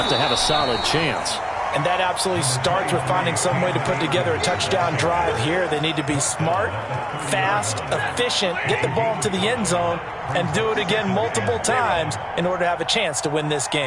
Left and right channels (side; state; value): both; identical; correlation 1.00